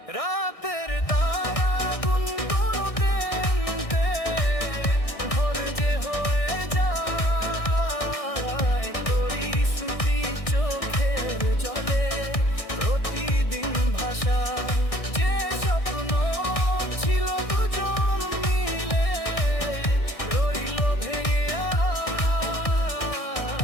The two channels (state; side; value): late; right; 1.6 ms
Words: রাতের তারা গুনগুনোতে ভোর যে হয়ে যায়, তোরই স্মৃতি চোখের জলে প্রতিদিন ভাষায়। যে স্বপ্ন ছিল দুজন মিলে রইল ভেঙে